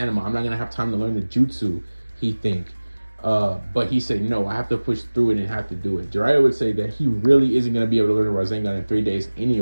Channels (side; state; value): both; inverted; correlation -1.00